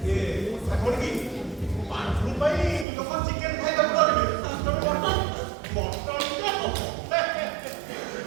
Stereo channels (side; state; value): left; drops out; at 2.9 s